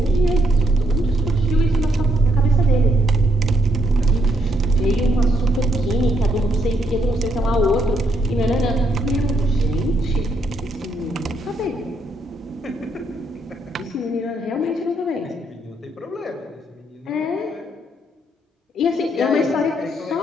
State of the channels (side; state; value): both; normal; correlation 0.74